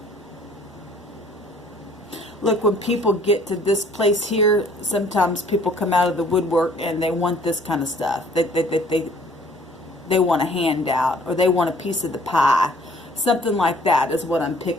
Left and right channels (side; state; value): both; normal; correlation 0.56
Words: Look, when people get to this place here, sometimes people come out of the woodwork and they want this kind of stuff. They want a handout, or they want a piece of the pie. Something like that is what I'm